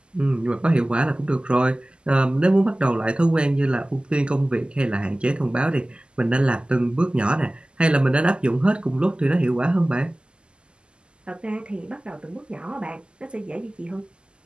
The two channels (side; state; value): left; late; 0.050 ms